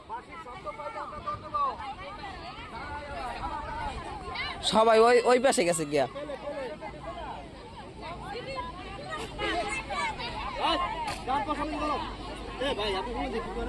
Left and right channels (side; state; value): both; identical; correlation 1.00